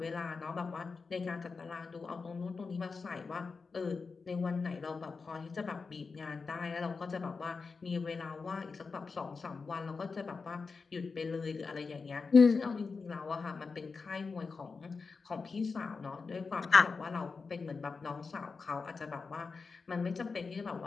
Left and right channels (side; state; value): right; quieter; 4.7 dB